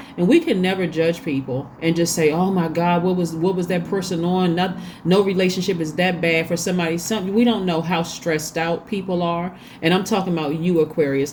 and we can never judge people and just say, oh my God, what was that person on? No relationship is that bad for somebody. We don't know how stressed out people are. And I'm talking about you,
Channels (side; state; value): both; identical; correlation 1.00